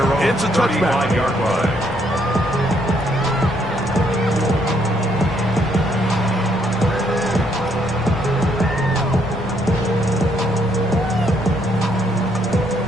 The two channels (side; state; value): both; normal; correlation 0.71